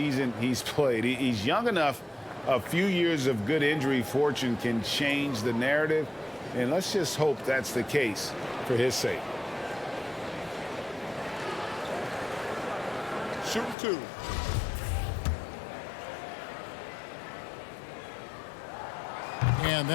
he's played. He's young enough. A few years of good injury fortune can change the narrative, and let's just hope that's the case for his sake. Shooting 2. And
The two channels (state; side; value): drops out; right; at 13.8 s